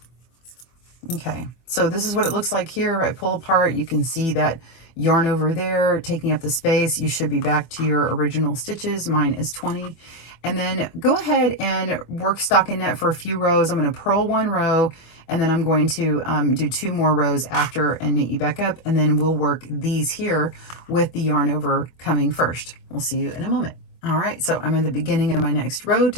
Okay, so this is what it looks like here. I pull apart, you can see that yarn over there taking up the space. You should be back to your original stitches. Mine is 20. And then go ahead and work stockinette for a few rows. I'm going to purl one row, and then I'm going to do 2 more rows after and meet you back up, and then we'll work these here with the yarn over coming first. We'll see you in a moment. All right, so I'm in the beginning of my next row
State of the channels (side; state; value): right; late; 24 ms